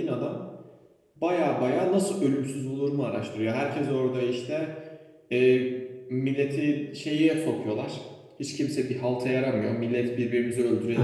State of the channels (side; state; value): both; identical; correlation 1.00